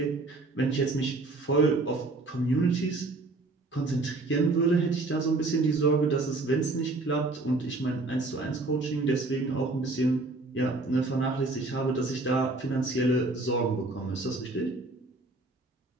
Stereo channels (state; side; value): quieter; left; 3.2 dB